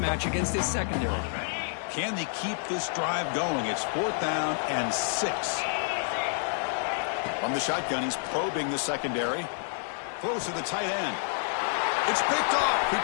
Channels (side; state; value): right; silent; digital silence